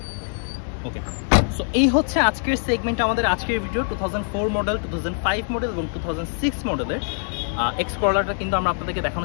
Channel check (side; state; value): right; silent; digital silence